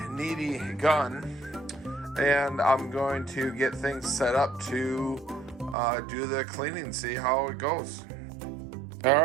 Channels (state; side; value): drops out; left; at 5.8 s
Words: needy gun. And I'm going to get things set up to do the cleaning, see how it goes. All